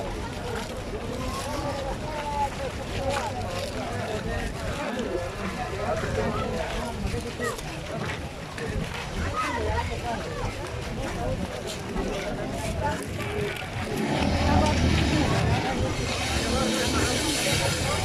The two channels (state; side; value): identical; both; correlation 1.00